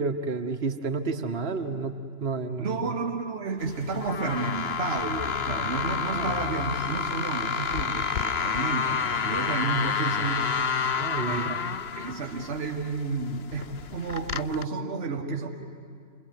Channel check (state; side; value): late; left; 2.9 ms